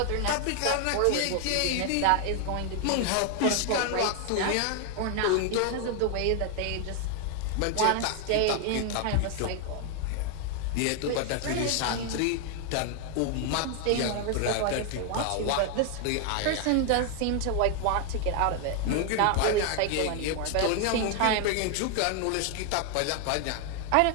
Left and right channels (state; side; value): different; both; correlation 0.00